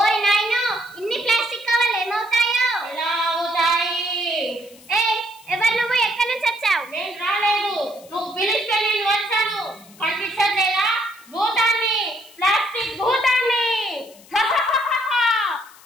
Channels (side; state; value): left; noise; hiss, 24 dB below the sound